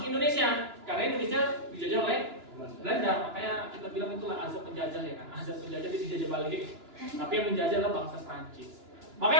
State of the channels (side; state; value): left; late; 2.9 ms